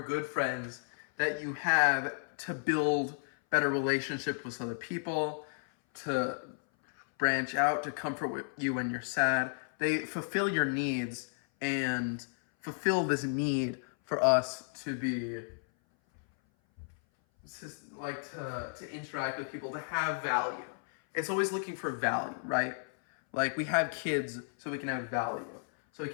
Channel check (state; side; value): silent; right; 56 dB below the other